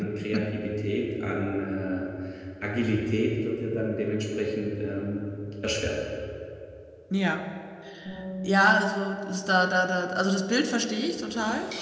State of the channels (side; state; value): both; identical; correlation 1.00